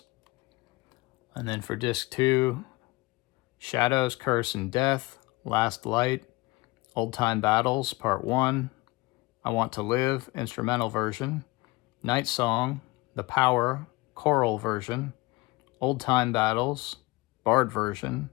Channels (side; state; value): right; quieter; 22.5 dB